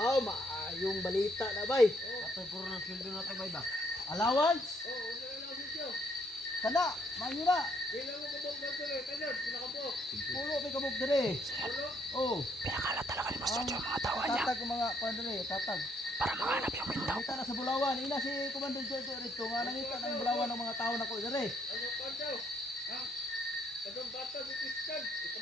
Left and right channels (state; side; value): normal; both; correlation 0.69